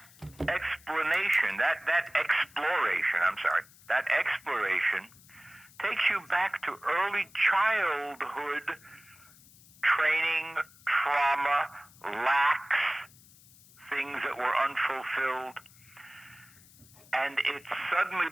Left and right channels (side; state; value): left; noise; hiss, 25 dB below the sound